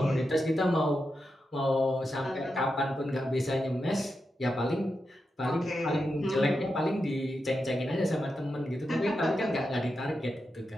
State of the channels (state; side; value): normal; both; correlation 0.88